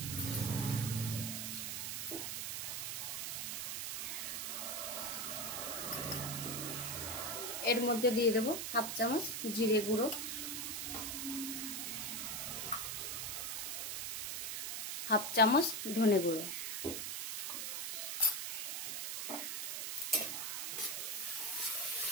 এর মধ্যে দিয়ে দেবো 1/2 চামচ জিরে গুঁড়ো, 1/2 চামচ ধনে গুঁড়ো,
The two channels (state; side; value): noise; right; hiss, 2 dB below the sound